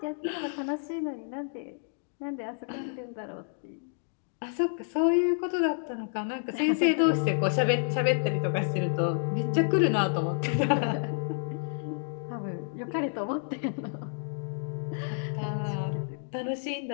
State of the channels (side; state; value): right; silent; digital silence